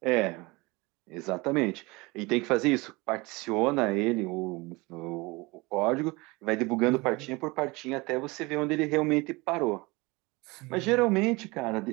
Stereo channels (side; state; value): left; quieter; 24.2 dB